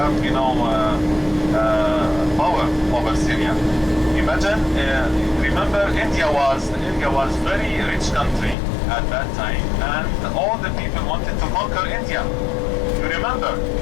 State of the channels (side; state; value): right; drops out; at 8.6 s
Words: power over Syria. Imagine, remember India was very rich country at that time, and all the people wanted to conquer India. You remember?